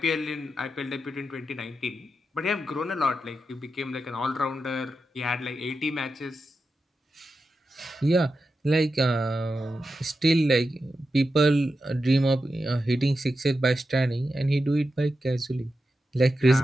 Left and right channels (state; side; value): normal; both; correlation 0.89